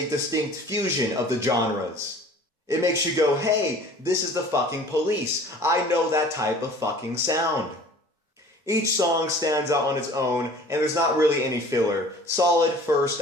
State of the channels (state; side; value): normal; both; correlation 0.47